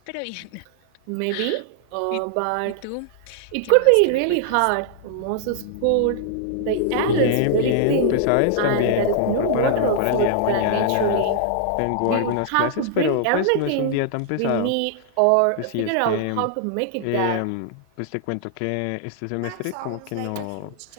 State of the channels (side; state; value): both; different; correlation -0.01